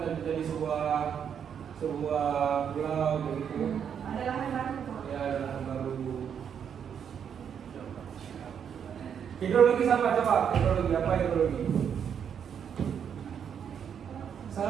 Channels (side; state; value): left; quieter; 7.9 dB